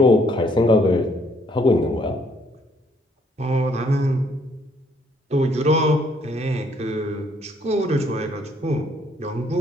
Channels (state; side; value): normal; both; correlation 0.66